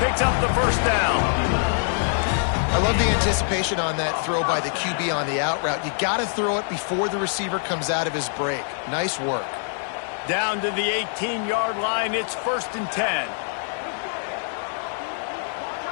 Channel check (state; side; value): silent; right; 62 dB below the other